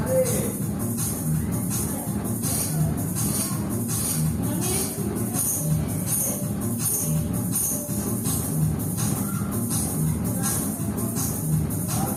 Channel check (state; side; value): identical; both; correlation 1.00